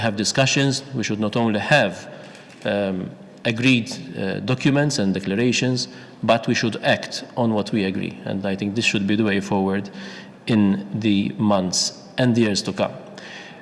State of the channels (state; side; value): identical; both; correlation 1.00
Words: discussions, we should not only have agreed documents and declarations, but we should act on what we agree. And I think this should be the way forward in the months and years to come.